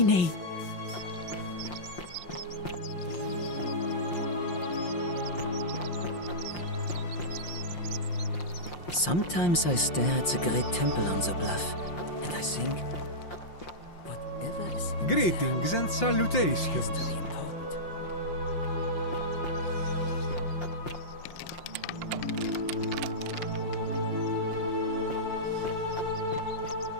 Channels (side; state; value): right; late; 5.7 ms